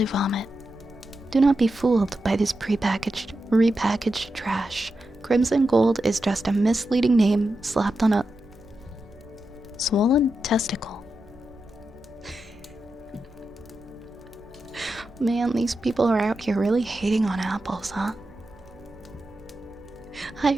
vomit. Do not be fooled by this repackaged trash. Crimson Gold is just a misleading name slapped on a swollen testicle. Man, these people are out here really hating on apples, huh? Hi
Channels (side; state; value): right; noise; hum, 29 dB below the sound